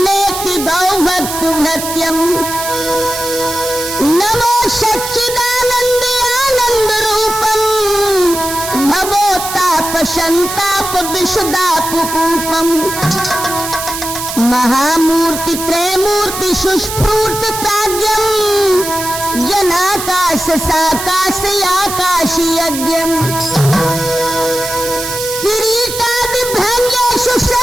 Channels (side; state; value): right; noise; hiss, 6 dB below the sound